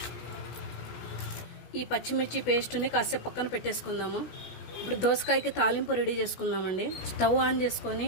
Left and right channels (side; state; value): right; late; 16 ms